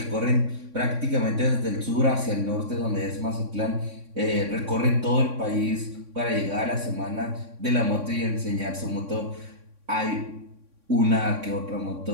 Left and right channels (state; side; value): late; left; 3.6 ms